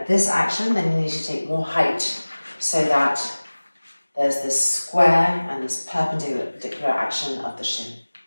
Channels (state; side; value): inverted; both; correlation -1.00